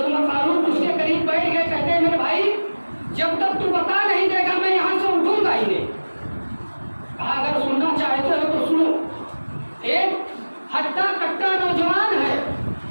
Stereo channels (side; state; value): both; inverted; correlation -1.00